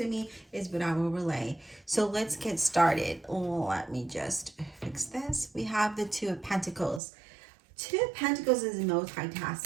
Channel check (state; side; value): drops out; left; at 7.0 s